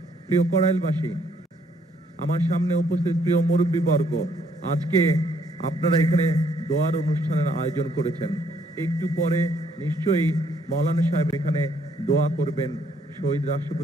প্রিয় কড়াইলবাসী, আমার সামনে উপস্থিত প্রিয় মুরব্বীবর্গ, আজকে আপনারা এখানে দোয়ার অনুষ্ঠানের আয়োজন করেছেন। একটু পরে নিশ্চয়ই মৌলানা সাহেব এখানে দোয়া করবেন শহীদ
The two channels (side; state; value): both; normal; correlation 0.68